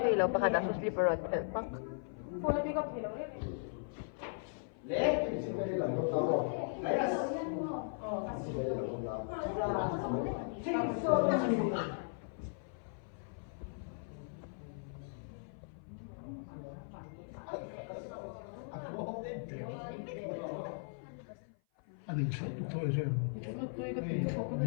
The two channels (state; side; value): silent; right; 53 dB below the other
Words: lo pakha da su slipper ot thel pak phone pick up hello 아니 저도 이제